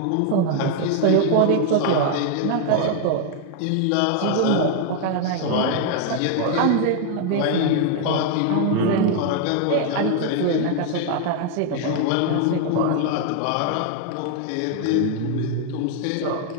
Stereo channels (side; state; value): both; different; correlation 0.00